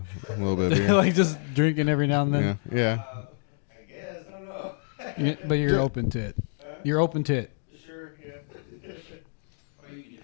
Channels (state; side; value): silent; right; digital silence